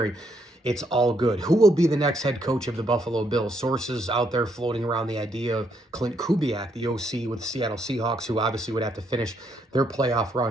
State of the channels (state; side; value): normal; both; correlation 0.74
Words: it's all good. Who will be the next head coach of the Buffalo Bills? Sources out there floating around the idea of Clint Kubiak, the OC with the Seattle Seahawks, who obviously would have to finish their playoff